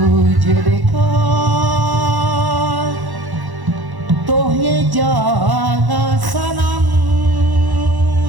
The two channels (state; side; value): late; left; 1.1 ms